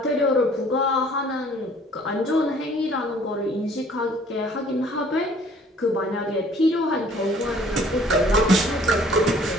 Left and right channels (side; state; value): both; normal; correlation 0.56